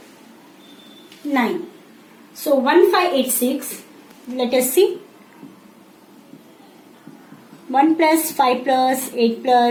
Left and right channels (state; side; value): identical; both; correlation 1.00